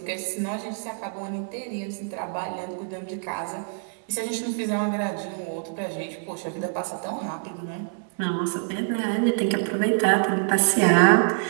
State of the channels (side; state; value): left; silent; digital silence